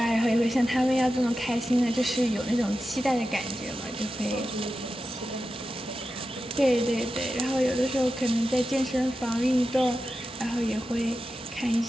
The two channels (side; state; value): both; normal; correlation 0.92